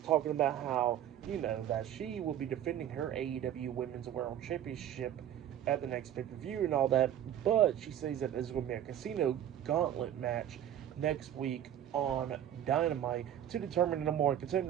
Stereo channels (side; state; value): left; quieter; 10.8 dB